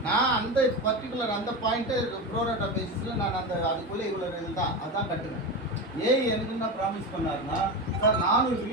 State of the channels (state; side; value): normal; both; correlation 0.20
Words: நான் அந்த பர்டிகுலர் அந்த பாயிண்ட்டு ப்ரோராட்டா பேசிஸில் நான் அந்த அதுக்குள்ளே இவ்வளோ இது தான் அதான் கட்டுவேன். எனக்கு என்ன ப்ராமிஸ் பண்ணாருன்னா, சார் 400